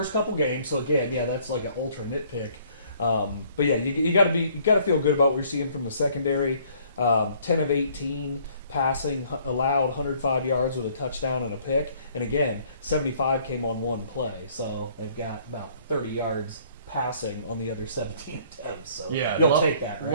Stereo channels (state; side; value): inverted; both; correlation -0.60